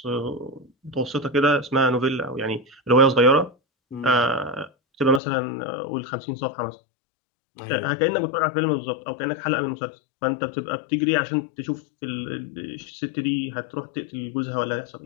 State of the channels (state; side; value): drops out; right; at 5.2 s